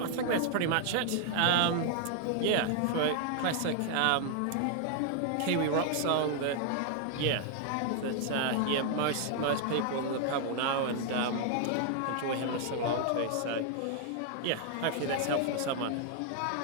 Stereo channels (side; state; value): both; different; correlation 0.00